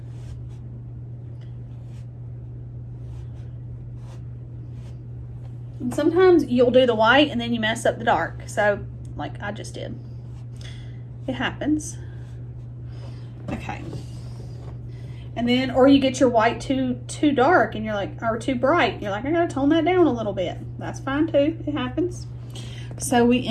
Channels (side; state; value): both; identical; correlation 1.00